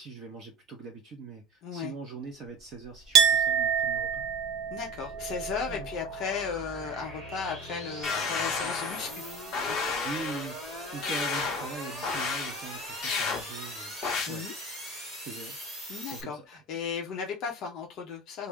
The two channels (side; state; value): both; normal; correlation 0.33